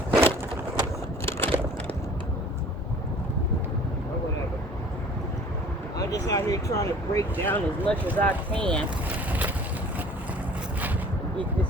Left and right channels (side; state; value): both; normal; correlation 0.49